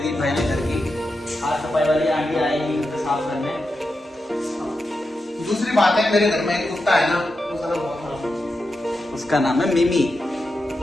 दीप भाई ने घर की। आज सफाई वाली आंटी आएगी उसे साफ करने। दूसरी बात है, मेरे घर में एक कुत्ता है ना, वो साला बहुत खराब। उसका नाम है मिमी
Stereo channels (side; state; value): both; normal; correlation 0.88